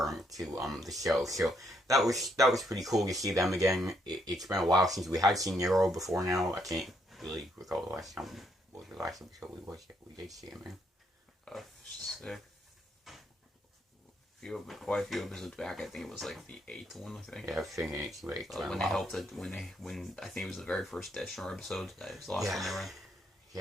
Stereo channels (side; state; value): both; normal; correlation 0.74